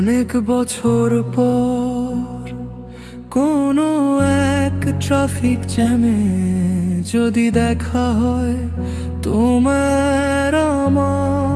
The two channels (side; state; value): both; identical; correlation 1.00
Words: অনেক বছর পর কোনো এক ট্রাফিক জ্যামে যদি দেখা হয় তোমার